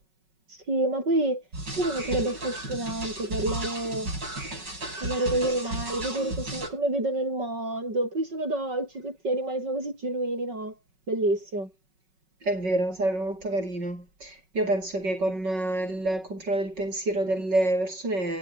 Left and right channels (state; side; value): late; left; 5.4 ms